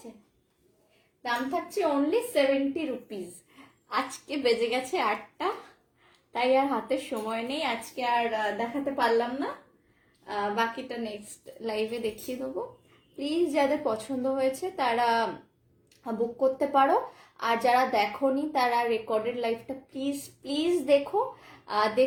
দাম থাকছে অনলি 70 রুপিস। আজকে বেজে গেছে 8টা, তাই আর হাতে সময় নেই, আজকে আর দেখাতে পারলাম না। বাকিটা নেক্সট লাইভে দেখিয়ে দেবো। প্লিজ যাদের পছন্দ হয়েছে তারা বুক করতে পারো, আর যারা দেখোনি তারা রেকর্ডেড লাইভটা প্লিজ প্লিজ দেখো।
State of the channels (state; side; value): identical; both; correlation 1.00